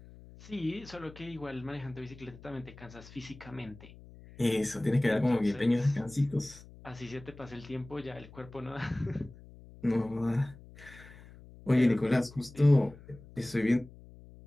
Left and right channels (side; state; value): left; noise; hum, 20 dB below the sound